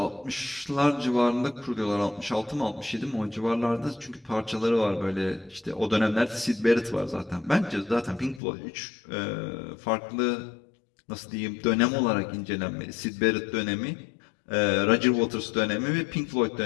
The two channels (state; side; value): drops out; right; at 8.4 s